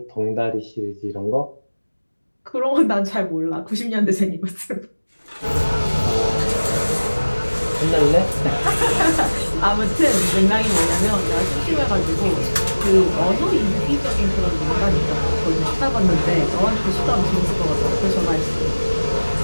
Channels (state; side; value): inverted; both; correlation -1.00